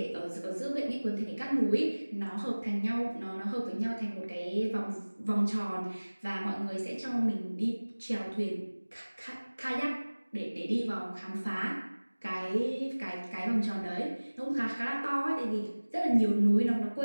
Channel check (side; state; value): both; inverted; correlation -1.00